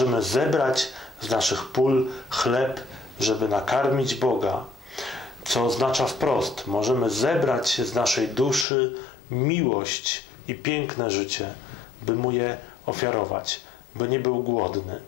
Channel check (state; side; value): drops out; right; at 8.7 s